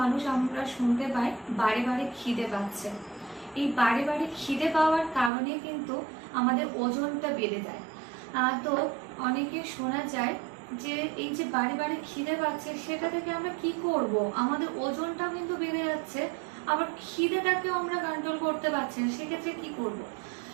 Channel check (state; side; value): drops out; left; at 5.3 s